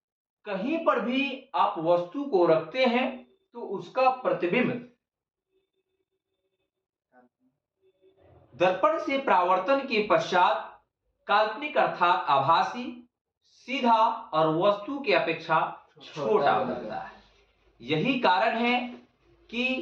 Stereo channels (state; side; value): identical; both; correlation 1.00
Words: कहीं पर भी आप वस्तु को रखते हैं तो उसका प्रतिबिंब दर्पण से परावर्तन के पश्चात काल्पनिक अर्थात आभासी, सीधा और वस्तु की अपेक्षा छोटा बनता है। यही कारण है